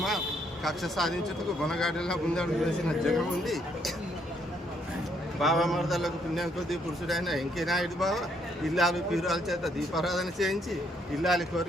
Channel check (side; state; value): both; normal; correlation 0.71